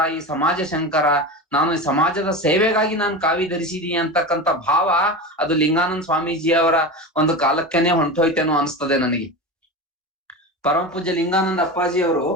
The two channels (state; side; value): normal; both; correlation 0.25